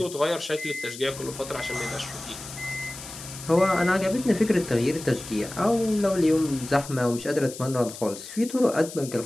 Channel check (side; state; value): left; noise; hiss, 13 dB below the sound